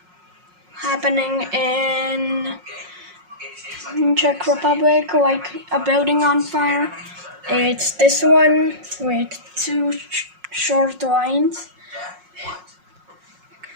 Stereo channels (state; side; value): late; left; 5.5 ms